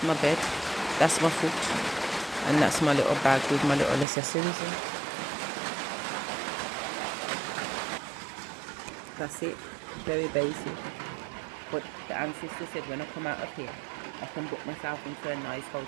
my bed. That's my foot. And that's my little bag with my little accessories in. That's it. Very basic. But the ancestor said when I come out of here, I can book myself into a nice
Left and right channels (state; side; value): drops out; left; at 4.0 s